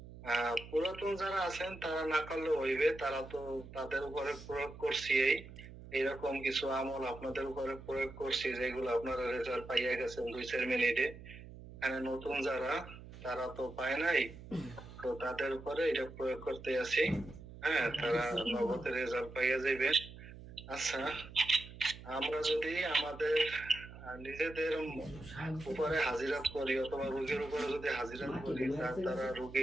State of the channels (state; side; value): noise; right; hum, 15 dB below the sound